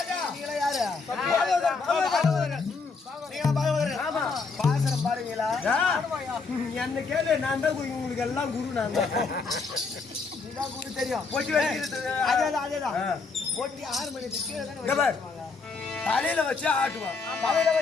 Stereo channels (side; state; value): right; quieter; 4.5 dB